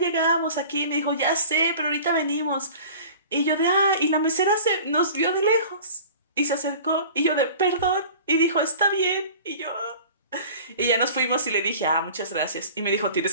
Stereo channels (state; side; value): inverted; both; correlation -0.42